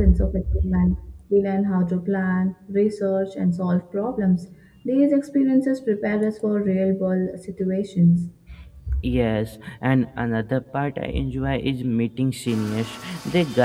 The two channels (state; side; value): identical; both; correlation 1.00